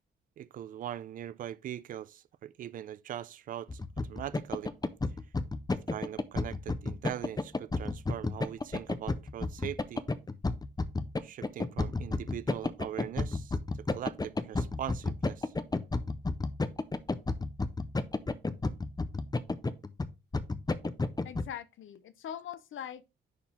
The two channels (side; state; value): both; normal; correlation 0.78